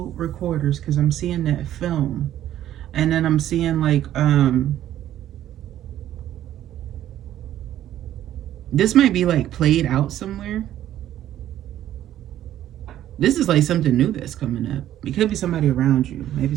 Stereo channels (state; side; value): quieter; left; 12.2 dB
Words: recorders, because I'm seeing that film. And then I'm seeing like, this might be like played out somewhere. This is like something new that's coming up. It could be somebody around you. Maybe